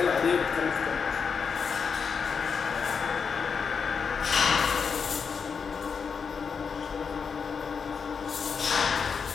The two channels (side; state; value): right; quieter; 5.9 dB